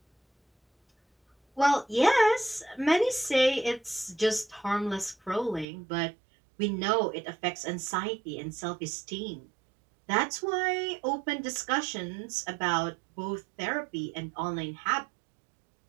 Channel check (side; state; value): left; drops out; at 5.7 s